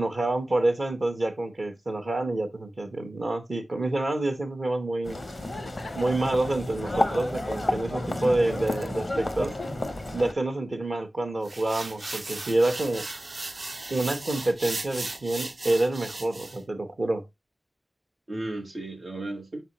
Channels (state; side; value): normal; both; correlation 0.96